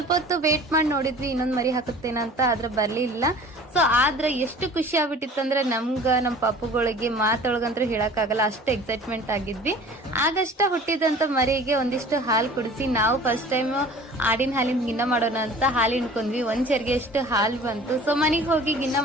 ಹೊತ್ತು ವೇಟ್ ಮಾಡಿ ನೋಡಿದ್ವಿ ಇನ್ನೊಂದ್ ಮರಿ ಹಾಕುತ್ತೇನಂತ, ಆದ್ರೆ ಬರ್ಲಿಲ್ಲ. ಸೊ ಆದ್ರೆ ಎಷ್ಟು ಖುಷಿ ಆಗ್ಬಿಟ್ಟಿತ್ತು ಅಂದ್ರೆ ನಮ್ಗ ನಮ್ ಪಾಪುಗಳಿಗೆ ಮಾತೊಳಗಂತ್ರ ಹೇಳಕ್ ಆಗಲ್ಲ, ಅಷ್ಟು ಎಕ್ಸೈಟ್ಮೆಂಟ್ ಆಗಿದ್ವಿ. ಆಗಷ್ಟ ಹುಟ್ಟಿದಂತ ಮರಿಗೆ ಒಂದಿಷ್ಟು ಹಾಲು ಕುಡಿಸಿ ನಾವು ಫಸ್ಟ್ ಟೈಮ್ ಆಡಿನ ಹಾಲಿನ ಗಿನ್ನ ಮಾಡೋಣ ಅಂತ ಹಾಲು ಹಿಂಡ್ಕೊಂಡ್ವಿ. 1 ಚೆರ್ಗೆ ಅಷ್ಟು ಹಾಲು ಬಂತು. ಸೊ ಮನೆಗೆ ಹೋಗಿ ಗಿನ್ನ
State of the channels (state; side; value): normal; both; correlation 0.45